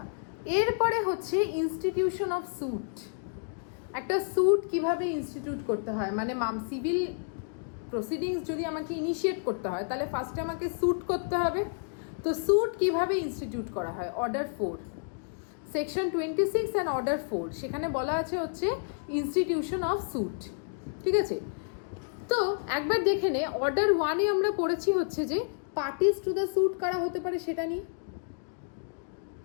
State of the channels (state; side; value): silent; right; digital silence